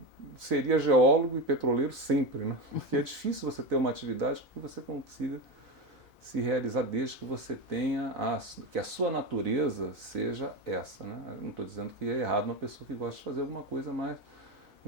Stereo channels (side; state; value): both; normal; correlation 0.17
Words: seria geólogo e petroleiro sempre, né? Porque é difícil você ter uma atividade que você consiga se realizar desde que você tenha que a sua natureza seja essa, né? Eu não estou dizendo que é errado uma pessoa que gosta de fazer alguma coisa mais